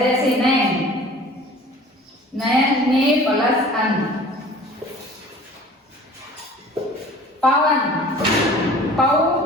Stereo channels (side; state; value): both; normal; correlation 0.46